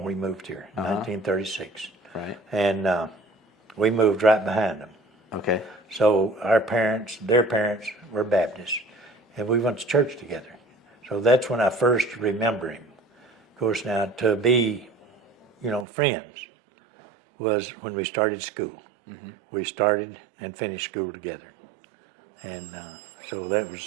when we moved here in 1936. Right. And we moved right behind them. Okay. So our parents, their parents were Baptists, and we went to church together. So that's when I first remember him. Of course, now to be, friends was when we started school. Mm-hmm. We started and finished school together. And so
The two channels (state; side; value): drops out; left; at 15.9 s